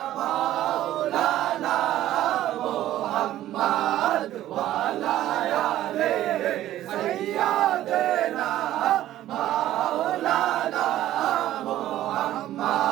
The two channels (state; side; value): quieter; left; 13.6 dB